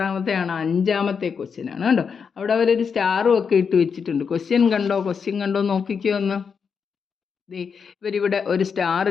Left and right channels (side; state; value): right; quieter; 6.2 dB